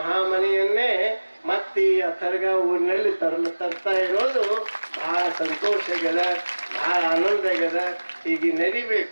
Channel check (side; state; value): both; inverted; correlation -1.00